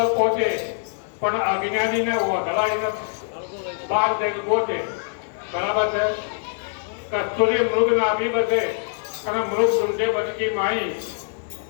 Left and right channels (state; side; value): silent; right; digital silence